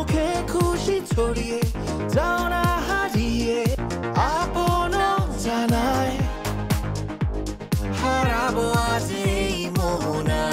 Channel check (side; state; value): both; identical; correlation 1.00